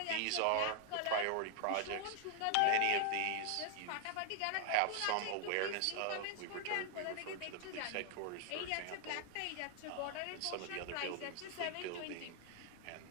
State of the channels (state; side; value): different; both; correlation 0.00